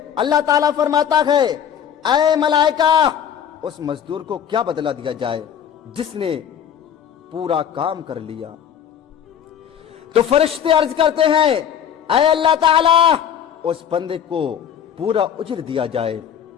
अल्लाह ताला फरमाता है, ऐ मलाइका, उस मजदूर को क्या बदला दिया जाए जिसने पूरा काम कर लिया। तो फरिश्ते अर्ज करते हैं, ऐ अल्लाह ताला, उस बंदे को पूरा उज्र दिया जाए।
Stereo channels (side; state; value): right; quieter; 8.9 dB